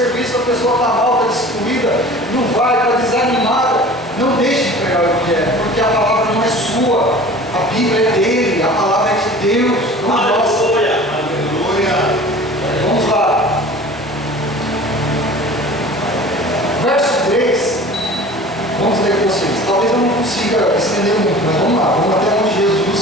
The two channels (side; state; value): both; normal; correlation 0.42